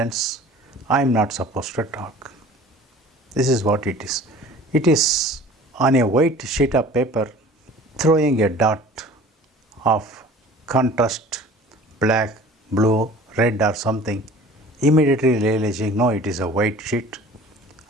I am not supposed to talk. This is what it is. It is on a white sheet of paper, throwing a dot of contrast, black, blue, red or something, immediately realizing, no, it is a white sheet.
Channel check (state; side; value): normal; both; correlation 0.45